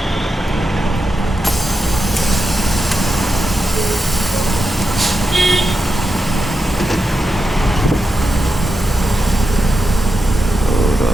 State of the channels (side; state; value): both; normal; correlation 0.88